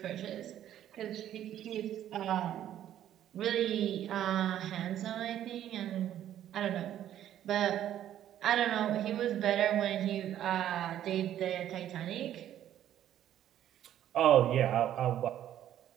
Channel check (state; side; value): quieter; left; 11.4 dB